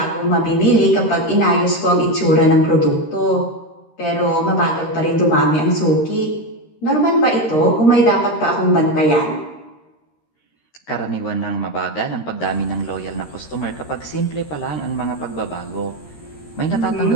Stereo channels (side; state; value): right; late; 13 ms